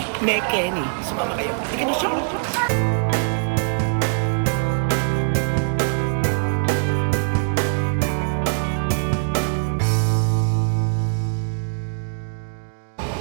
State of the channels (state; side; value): silent; left; digital silence